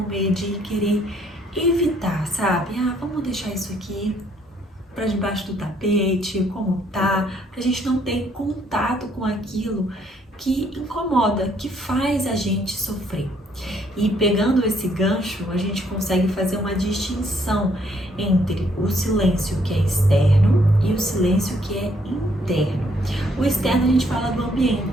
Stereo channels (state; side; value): normal; both; correlation 0.68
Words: de querer evitar, sabe? Vamos deixar isso aqui para debaixo do tapete, como tá, pra gente não ter contato com aquilo que incomoda, que faz a gente sofrer. E pegando esse gancho, a gente consegue fazer uma distinção entre o silêncio que é externo e o silêncio que é interno. O externo a gente fala do